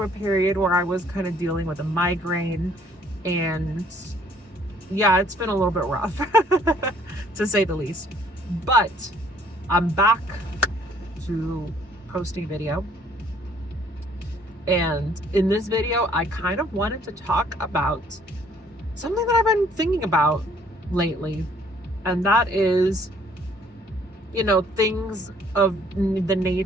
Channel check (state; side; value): normal; both; correlation 0.61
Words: a period where I was kind of dealing with a migraine, and yeah, it's been a little bit rough to say the least. But I'm back to posting video. And in this video, I kind of wanted to talk about something that I've been thinking about lately. And that is, things of the